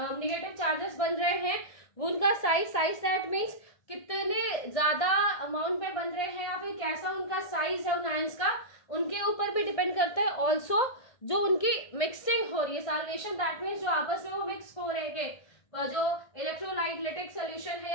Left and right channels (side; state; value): right; late; 1.6 ms